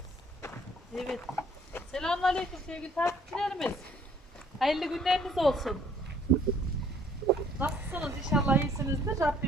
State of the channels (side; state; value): both; normal; correlation 0.60